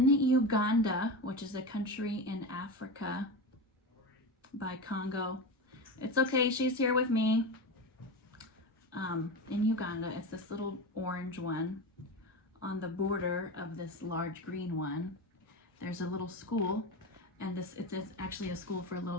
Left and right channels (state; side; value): normal; both; correlation 0.22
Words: Uganda, which is a country in Africa by Congo. It's okay, she's here with me. In Uganda, it's this little orange one on the border of this large green one. There's a little school, and it's actually a school for